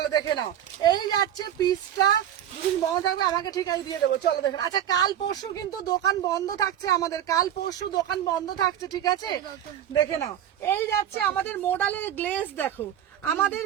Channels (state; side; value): quieter; left; 10.5 dB